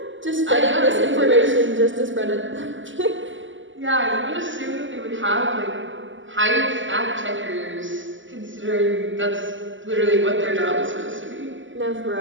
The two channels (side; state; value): left; late; 0.55 ms